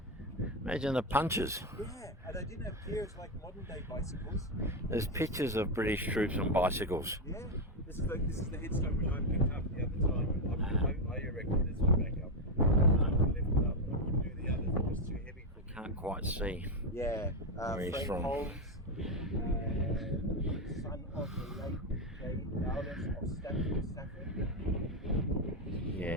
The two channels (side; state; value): both; normal; correlation 0.07